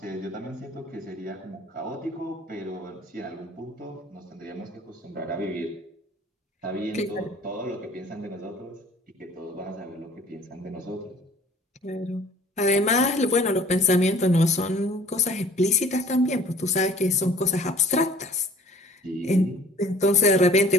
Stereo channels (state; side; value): normal; both; correlation 0.52